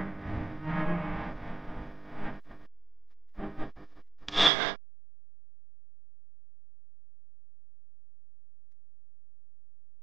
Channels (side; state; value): left; drops out; at 4.5 s